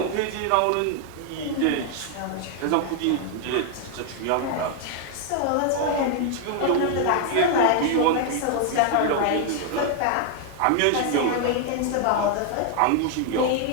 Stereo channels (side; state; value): both; different; correlation 0.00